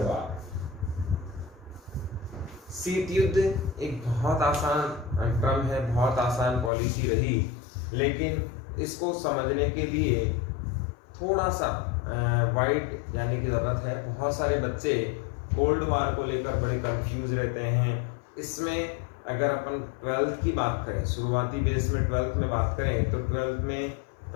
शीत युद्ध एक बहुत आसान टर्म है, बहुत आसान पॉलिसी रही, लेकिन इसको समझने के लिए थोड़ा सा वाइड जाने की जरूरत है। बहुत सारे बच्चे कोल्ड वॉर को लेकर बड़े कंफ्यूज रहते हैं। इसमें अगर अपन 12th की बात करें, शुरुआती बेस में 12th में बात करें तो 12th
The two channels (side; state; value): right; drops out; at 6.7 s